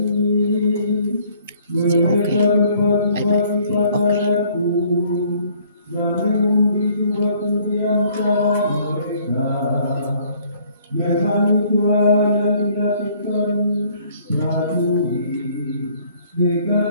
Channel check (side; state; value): both; inverted; correlation -0.60